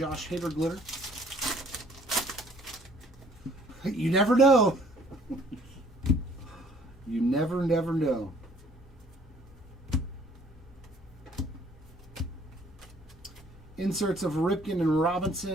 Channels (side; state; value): both; normal; correlation 0.57